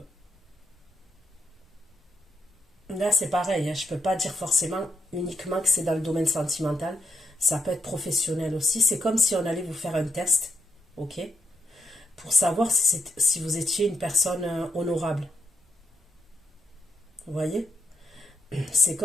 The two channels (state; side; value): normal; both; correlation 0.82